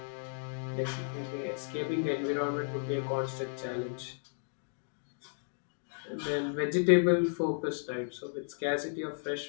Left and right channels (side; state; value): right; silent; digital silence